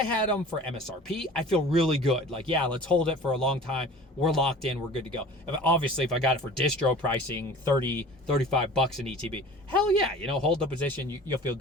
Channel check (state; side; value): normal; both; correlation 0.43